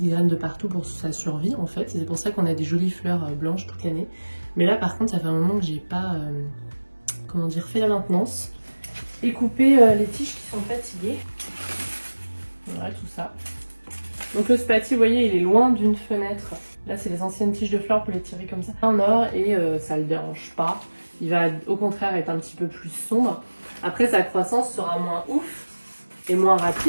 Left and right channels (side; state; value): both; inverted; correlation -1.00